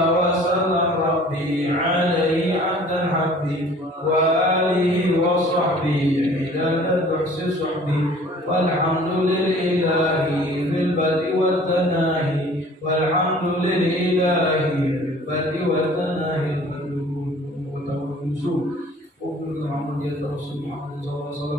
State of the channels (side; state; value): both; normal; correlation 0.50